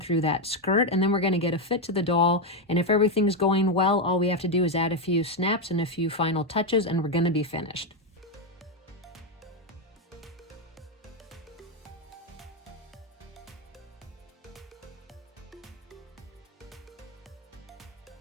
that skirt, and then we're going to get a fit to the doll. And if everything's going well, all we have to do is add a few snaps and a few final touches, and we're going to be finished.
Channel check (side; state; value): both; normal; correlation 0.05